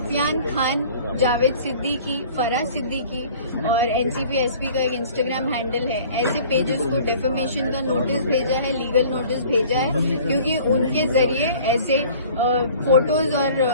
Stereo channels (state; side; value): inverted; both; correlation -0.49